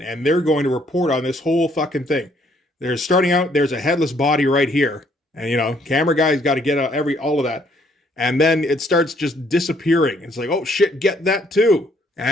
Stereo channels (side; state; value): both; normal; correlation 0.66